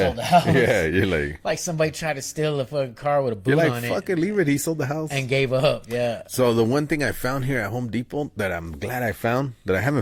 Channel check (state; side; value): identical; both; correlation 1.00